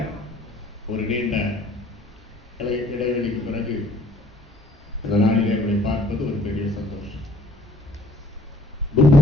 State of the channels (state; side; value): normal; both; correlation 0.60